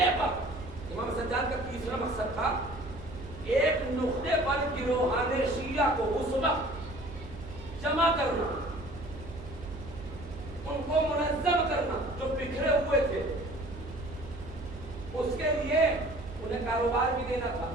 پر امام سجاد کا تیسرا مقصد تھا ایک نقطے پر گروہان شیعہ کو اس وقت جمع کرنا, ان کو منظم کرنا جو بکھرے ہوئے تھے. اس کے لیے انہیں کاروبار بھی دینا تھا,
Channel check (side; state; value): right; noise; hum, 14 dB below the sound